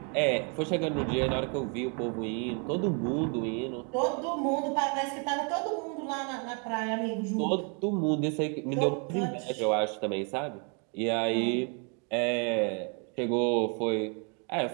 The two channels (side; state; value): left; quieter; 37.4 dB